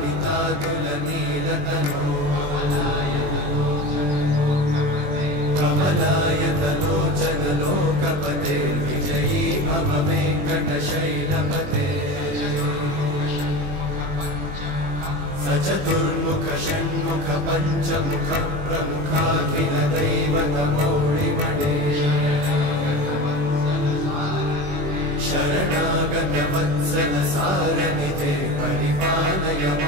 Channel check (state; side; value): late; left; 21 ms